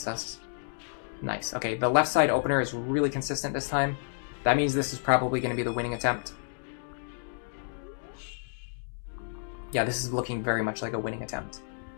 us. Nice. Okay, the left side opener is really consistent this time. That means this is probably going to be the winning attempt. Yeah, this is looking very much like a winning attempt.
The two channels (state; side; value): silent; right; digital silence